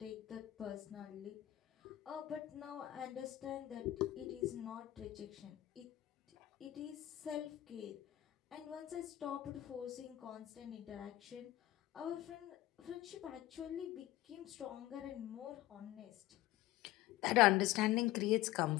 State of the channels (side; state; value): right; quieter; 15.1 dB